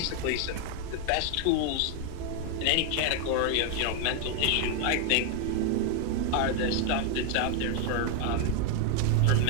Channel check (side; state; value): both; different; correlation 0.01